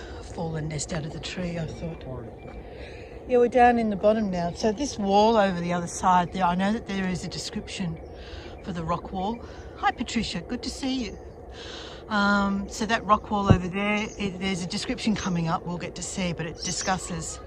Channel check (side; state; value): both; identical; correlation 1.00